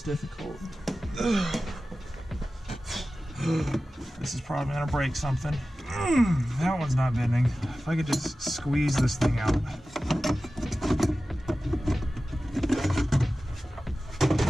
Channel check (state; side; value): normal; both; correlation 0.95